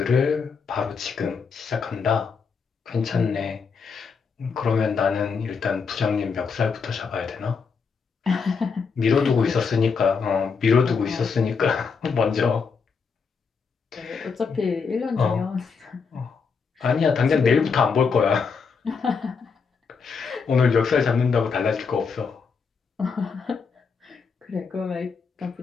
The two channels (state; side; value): quieter; right; 5.5 dB